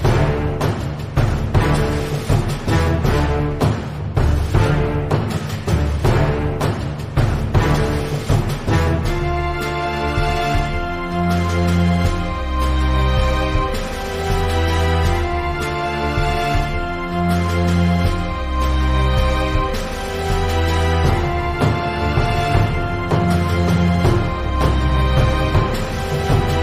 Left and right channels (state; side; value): identical; both; correlation 1.00